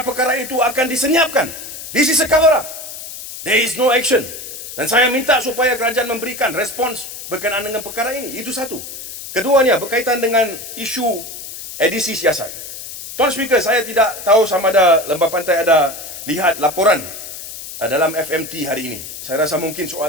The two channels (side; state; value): left; noise; hiss, 11 dB below the sound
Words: itu akan disenyapkan. This is a cover-up. There is no action. Dan saya minta supaya kerajaan memberikan respons berkenaan dengan perkara ini. Itu satu. Keduanya berkaitan dengan isu edisi siasat. Tuan Speaker, saya tidak tahu sama ada Lembah Pantai ada lihat laporan dalam FMT hari ini. Saya rasa mungkin